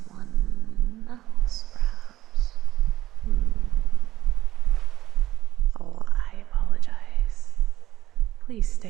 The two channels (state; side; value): quieter; left; 14.8 dB